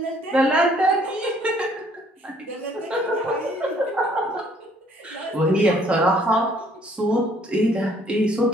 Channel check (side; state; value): both; normal; correlation 0.62